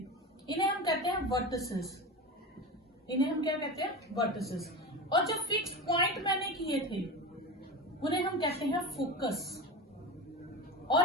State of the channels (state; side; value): normal; both; correlation 0.25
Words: इन्हें हम कहते हैं वर्टिसेस, इन्हें हम क्या कहते हैं, वर्टिसेस। और जो फिक्स पॉइंट मैंने किए थे उन्हें हम कहते हैं फोकस।